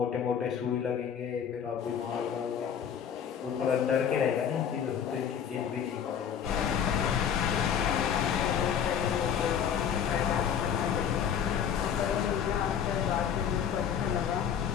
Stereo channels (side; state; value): right; quieter; 8.2 dB